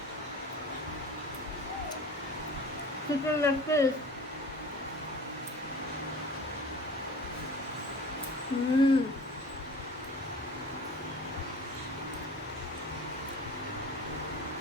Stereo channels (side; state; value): both; normal; correlation 0.41